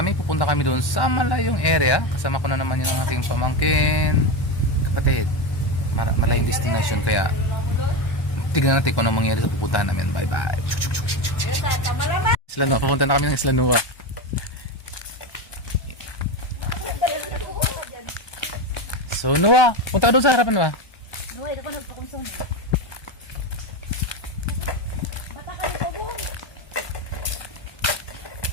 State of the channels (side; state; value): right; late; 1.1 ms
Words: Pupunta kami doon sa malayong area. Kasama ko na naman yung aking pamangkin, kapatid. Malayong destination. Kaya tignan natin kung anong mangyari sa pupuntahan namin. Bye bye. Isla Nua. Papunta na kami ng Isla Nua. So Nua, punta ka doon sa harapan ba? Nua, ito ko nagpakonsong. Bata ka nito, buong.